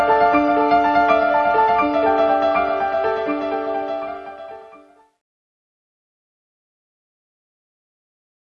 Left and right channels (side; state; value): both; identical; correlation 1.00